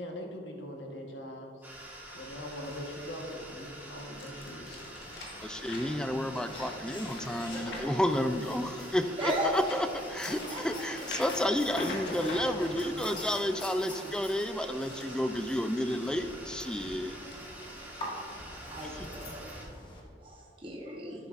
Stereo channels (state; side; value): normal; both; correlation 0.70